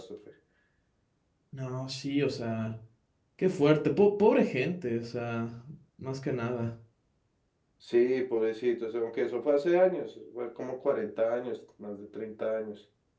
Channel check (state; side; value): identical; both; correlation 1.00